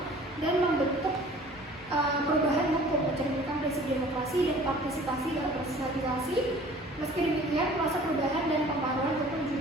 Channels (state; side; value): normal; both; correlation 0.49